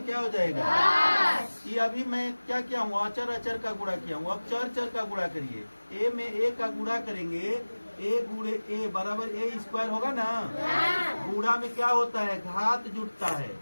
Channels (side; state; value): both; inverted; correlation -1.00